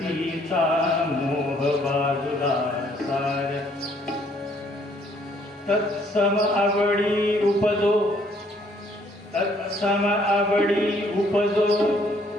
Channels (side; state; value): both; normal; correlation 0.64